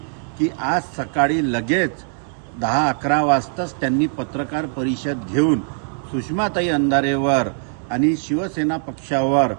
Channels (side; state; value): left; silent; 63 dB below the other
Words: की आज सकाळी लगेच 10-11 वाजताच त्यांनी पत्रकार परिषद घेऊन सुषमाताई अंधारेवर आणि शिवसेना पक्षावर